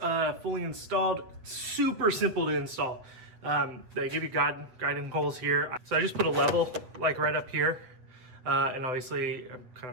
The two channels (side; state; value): left; late; 7.9 ms